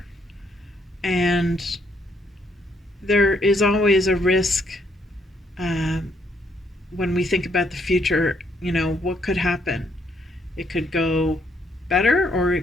And there is always a risk when we think about the future. What could happen? It could go better or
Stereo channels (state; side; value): normal; both; correlation 0.71